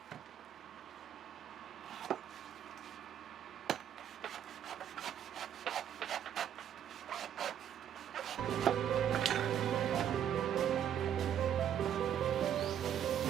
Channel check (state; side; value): quieter; left; 9.7 dB